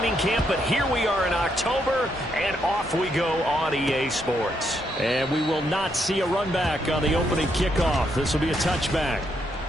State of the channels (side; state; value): both; normal; correlation 0.77